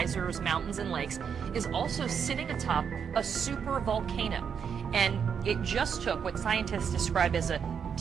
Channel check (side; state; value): left; quieter; 7.1 dB